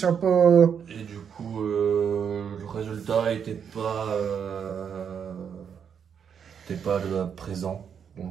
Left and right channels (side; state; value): left; quieter; 7.5 dB